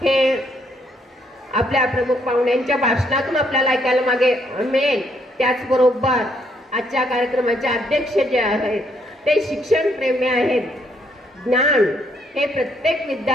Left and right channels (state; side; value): normal; both; correlation 0.71